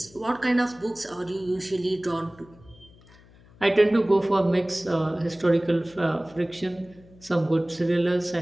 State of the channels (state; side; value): noise; left; hum, 25 dB below the sound